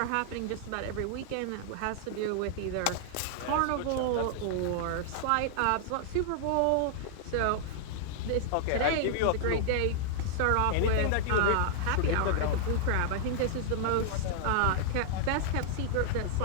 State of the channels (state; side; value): different; both; correlation -0.01